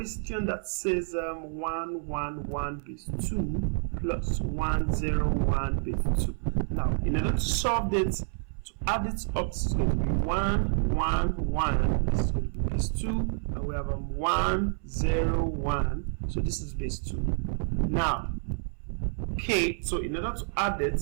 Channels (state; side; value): silent; left; 59 dB below the other